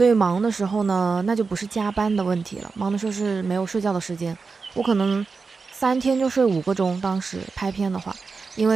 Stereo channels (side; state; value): left; quieter; 4.7 dB